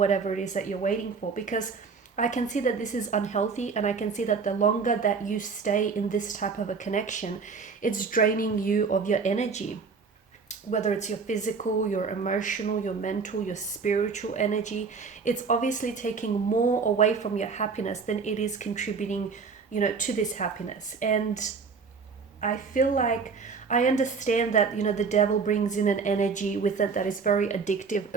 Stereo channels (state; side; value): quieter; left; 5.1 dB